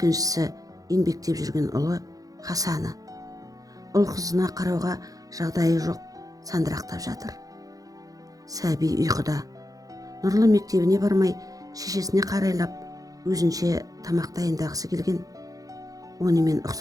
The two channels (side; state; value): left; late; 0.17 ms